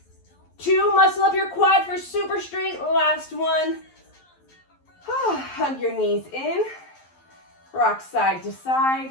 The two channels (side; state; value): right; late; 11 ms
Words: 2, muscle up your quad for super straight. Last one. Hug your knees in. Rock side to